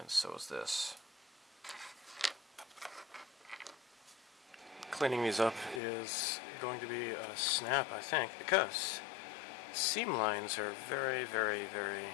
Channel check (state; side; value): drops out; right; at 5.8 s